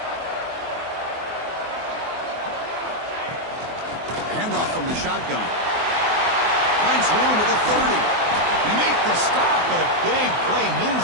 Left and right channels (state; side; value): late; left; 24 ms